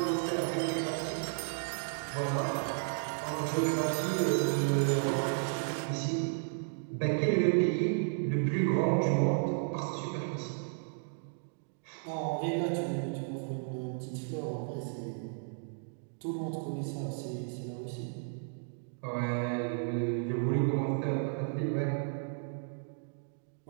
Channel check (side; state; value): left; silent; digital silence